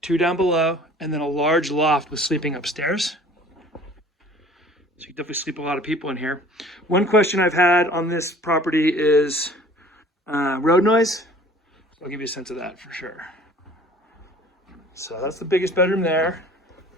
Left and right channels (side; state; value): both; normal; correlation 0.49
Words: 2 down below, and then a large loft with sleeping upstairs. So you can definitely sleep a lot of people in here. One question I've had on this property is road noise. I'll give you a sense of that for sure. So that's the biggest bedroom there.